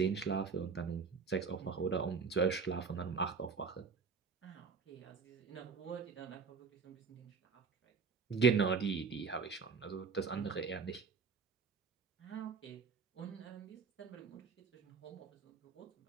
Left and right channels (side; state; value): left; quieter; 5.3 dB